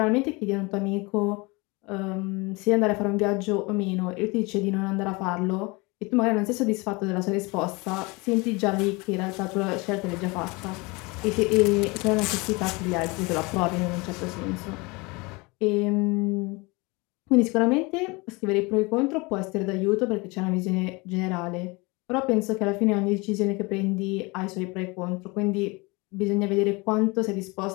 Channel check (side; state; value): right; quieter; 26.0 dB